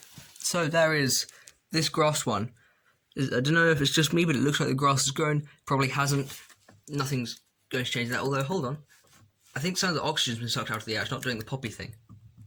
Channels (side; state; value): both; identical; correlation 1.00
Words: So there is this grass one. I don't know if it's just me, but it looks like the grass has grown. Probably hasn't. Nothing's going to change that, although, hold on. I think some of the oxygen's been sucked out of the air. It's not doing the poppy thing.